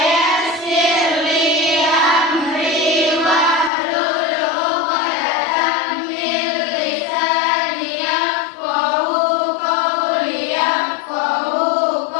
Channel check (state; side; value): drops out; right; at 3.7 s